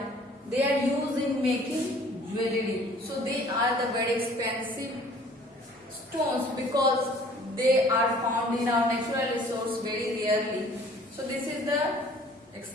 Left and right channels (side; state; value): both; normal; correlation 0.53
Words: They are used in making jewelry. So they are the very expensive stones because they are found in our natural resource very rarely. So this is the